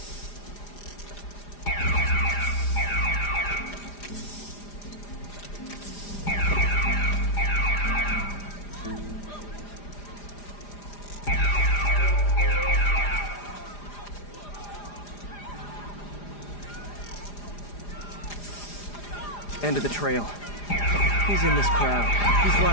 End of the trail. He's in this crowd. He's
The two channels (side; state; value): right; late; 4.9 ms